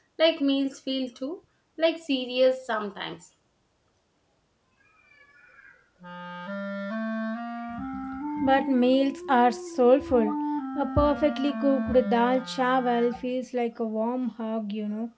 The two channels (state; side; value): identical; both; correlation 1.00